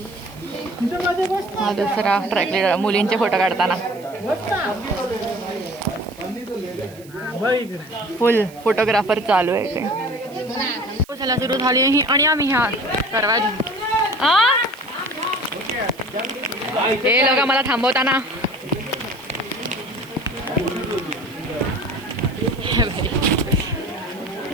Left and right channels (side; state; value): right; noise; hiss, 24 dB below the sound